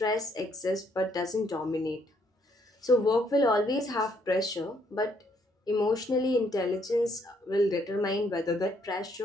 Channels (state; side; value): normal; both; correlation 0.70